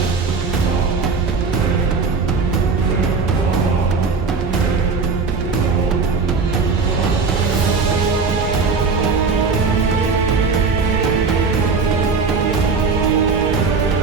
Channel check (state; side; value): quieter; left; 4.7 dB